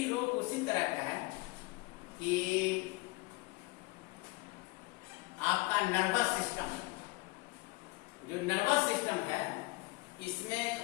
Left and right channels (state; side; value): quieter; right; 24.4 dB